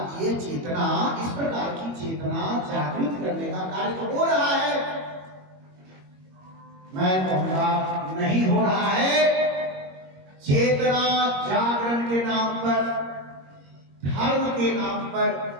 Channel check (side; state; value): left; late; 21 ms